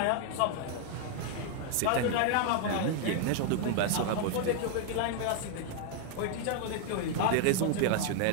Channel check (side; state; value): both; different; correlation 0.00